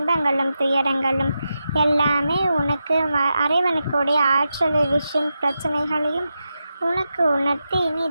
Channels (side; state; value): both; inverted; correlation -0.89